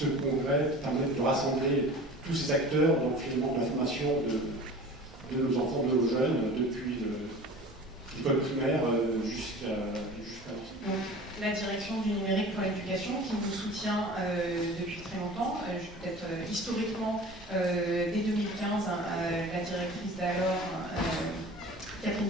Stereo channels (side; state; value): both; normal; correlation 0.40